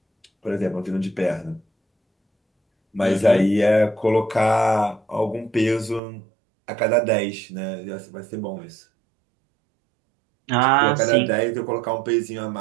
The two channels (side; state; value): left; drops out; at 6.0 s